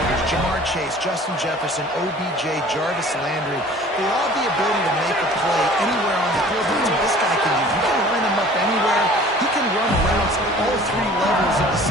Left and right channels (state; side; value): normal; both; correlation 0.48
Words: Jamar Chase, Justin Jefferson, OBJ, Jarvis Landry. They all have the ability to make a play anywhere on the field. That's what this guy can do. You can line him up anywhere. He can run routes at all 3 levels of